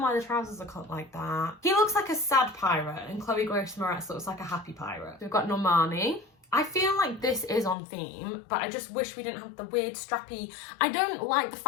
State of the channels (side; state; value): right; drops out; at 7.8 s